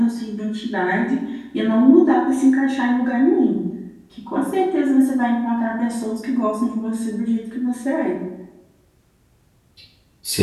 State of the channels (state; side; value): identical; both; correlation 1.00